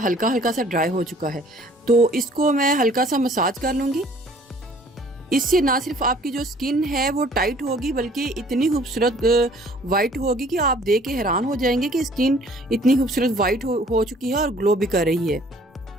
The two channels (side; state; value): both; normal; correlation 0.55